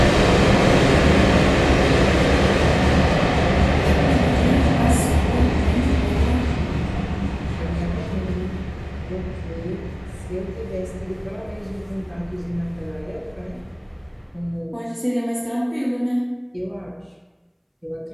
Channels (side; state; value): both; identical; correlation 1.00